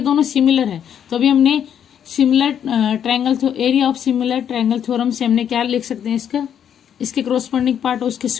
सिमिलर है तो अभी हमने similar triangle area of similar triangle theorem से हमने क्या लिख सकते हैं, इसका इसके क्रॉसपोंडिंग पार्ट और उसके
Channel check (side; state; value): right; quieter; 9.0 dB